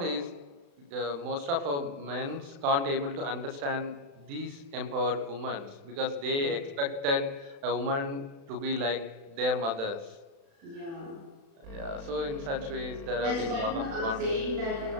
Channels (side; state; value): left; late; 35 ms